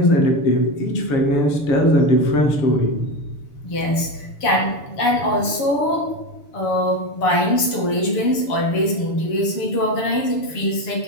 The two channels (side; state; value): right; late; 7.1 ms